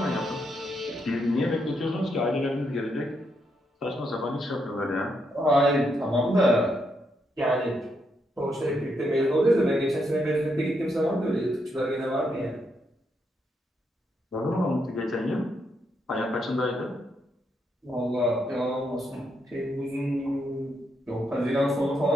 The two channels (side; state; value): both; normal; correlation 0.79